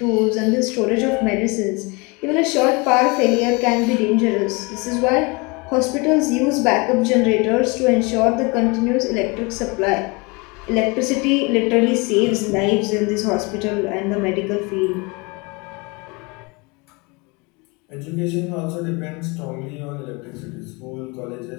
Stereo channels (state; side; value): quieter; right; 28.0 dB